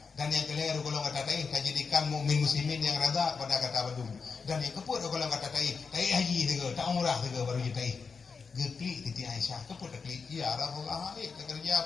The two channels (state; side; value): quieter; right; 5.2 dB